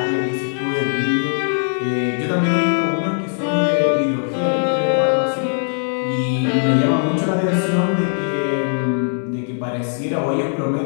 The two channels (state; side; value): silent; right; 66 dB below the other